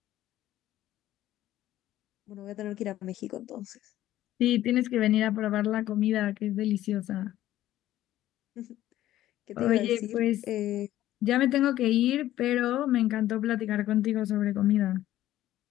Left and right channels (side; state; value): right; quieter; 13.9 dB